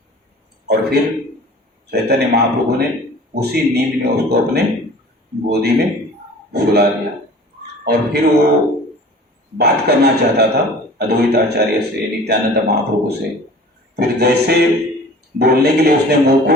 और फिर चैतन्य महाप्रभु ने उसी नींद में उसको अपने गोदी में सुला दिया और फिर वो बात करना चाहता था अद्वैत आचार्य से, नित्यानंद महाप्रभु से। फिर जैसे बोलने के लिए उसने मुंह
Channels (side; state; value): both; normal; correlation 0.44